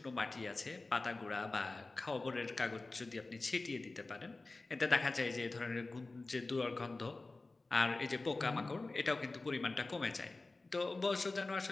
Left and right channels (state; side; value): quieter; right; 3.3 dB